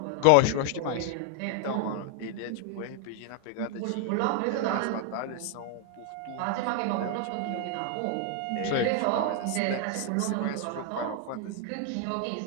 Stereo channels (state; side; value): different; both; correlation 0.00